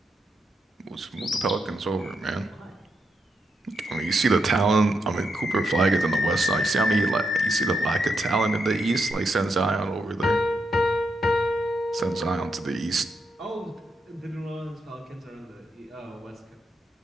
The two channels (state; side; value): normal; both; correlation 0.82